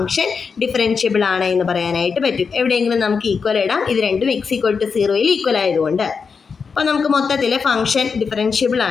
ഡിഫറൻഷ്യബിൾ ആണ് എന്ന് പറയാനായിട്ട് പറ്റും. എവിടെയെങ്കിലും നമുക്ക് ഈക്വൽ ഇടാം, ഇത് രണ്ടും x = 0യിൽ ഈക്വൽ ആയതുകൊണ്ട്. അപ്പോൾ നമുക്ക് മൊത്തത്തിൽ ഫംഗ്ഷൻ ഡിഫറൻഷ്യബിൾ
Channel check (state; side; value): quieter; right; 5.5 dB